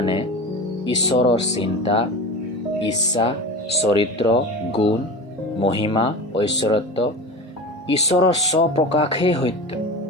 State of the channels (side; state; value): both; normal; correlation 0.30